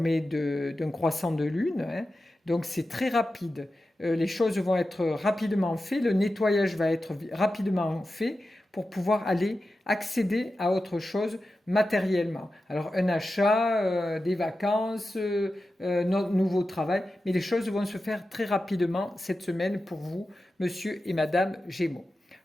d'un croissant de lune, hein, donc c'est très rapide. Les choses vont être rapidement faites, le nettoyage va être rapidement fait pour pouvoir aller accéder à autre chose matériellement. Alors un achat, des vacances, notre nouveau travail, mais les choses vont se faire très rapidement cette semaine pour vous, monsieur et madame Gémeaux.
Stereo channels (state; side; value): normal; both; correlation 0.92